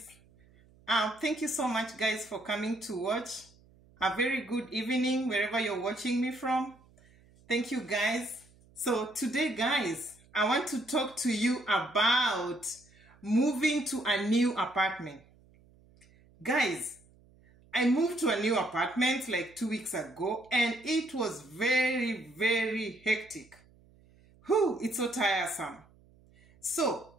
thank you so much guys for coming to watch. A very good evening wherever you're watching me from. Thank you guys. So today guys, I want to talk to you about moving to a new apartment. Guys, I moved to a new apartment like 2 weeks ago and it was very hectic. It's so tiresome. So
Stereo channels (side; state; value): right; noise; hum, 28 dB below the sound